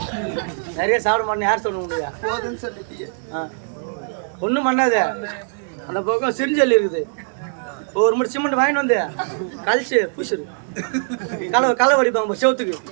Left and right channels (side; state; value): left; silent; digital silence